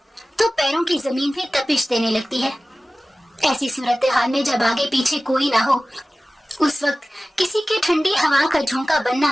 तो पैरों की जमीन भी तपिश देने लगती है। ऐसी सूरत हाल में जब आगे पीछे कोई ना हो, उस वक्त किसी के ठंडी हवा का झोंका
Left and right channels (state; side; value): normal; both; correlation 0.97